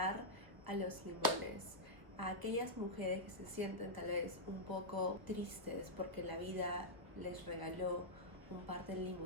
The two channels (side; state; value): left; late; 1.2 ms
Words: a los limones, a aquellas mujeres que se sienten tal vez un poco tristes porque la vida les regaló un par de